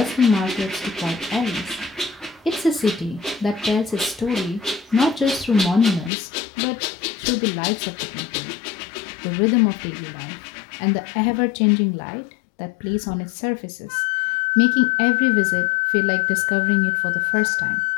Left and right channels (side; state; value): right; drops out; at 6.1 s